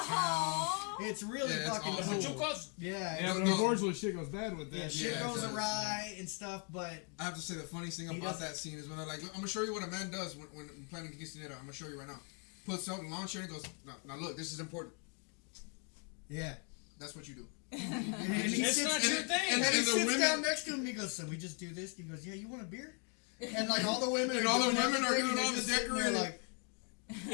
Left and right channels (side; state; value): right; quieter; 38.8 dB